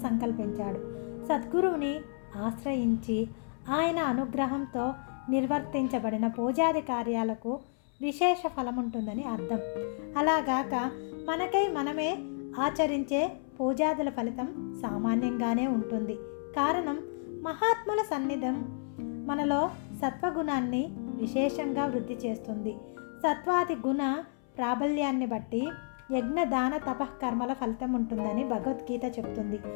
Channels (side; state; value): right; silent; 57 dB below the other